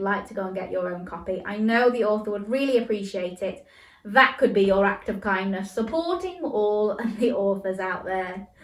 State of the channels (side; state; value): both; identical; correlation 1.00